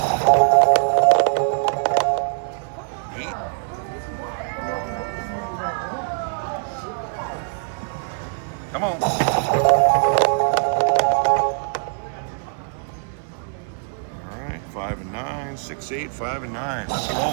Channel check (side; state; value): left; silent; 64 dB below the other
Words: 8. Come on. All right, 5 and 9, 6, 8, 5 and 9. Let's